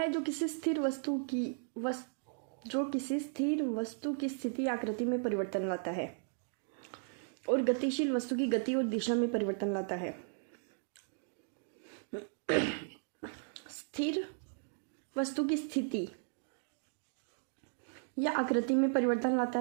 जो किसी स्थिर वस्तु की स्थिति आकृति में परिवर्तन लाता है और गतिशील वस्तु की गति और दिशा में परिवर्तन लाता है। स्थिर वस्तु की स्थिति या आकृति में परिवर्तन लाता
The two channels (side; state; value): left; silent; digital silence